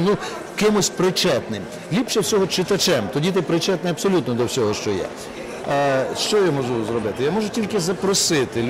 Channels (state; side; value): identical; both; correlation 1.00